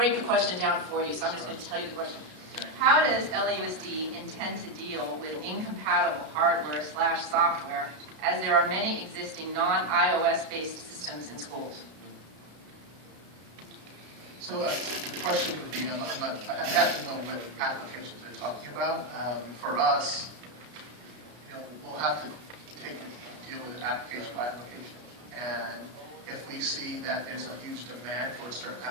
the question down for you, so I'm just going to tell you the question. How does LAUSD intend to deal with incompatible hardware/software, as there are many existing non-iOS based systems in schools? So the question would be, I have to know what applications they're talking about. For us, we'll have to deal with it application by application. And if we see that there's a huge demand for a certain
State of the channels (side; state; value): left; late; 33 ms